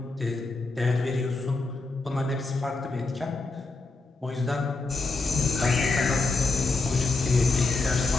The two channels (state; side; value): quieter; right; 3.5 dB